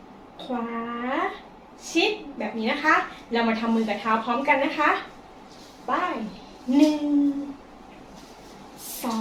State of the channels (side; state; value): both; identical; correlation 1.00